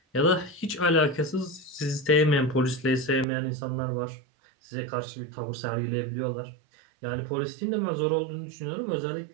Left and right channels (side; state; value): left; drops out; at 3.2 s